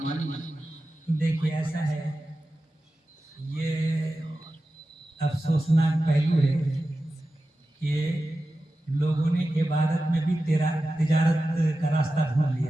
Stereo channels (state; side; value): normal; both; correlation 0.93